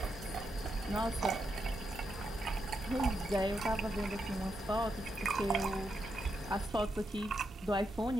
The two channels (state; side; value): normal; both; correlation 0.83